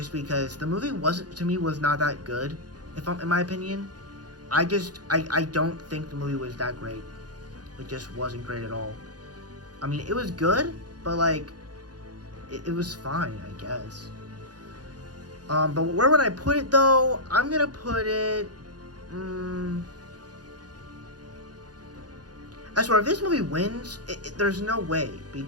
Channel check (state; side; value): late; left; 0.69 ms